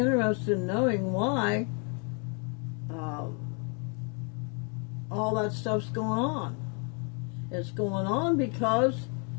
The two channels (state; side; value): quieter; right; 37.7 dB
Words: in knowing why all that stuff's going on? It's going on because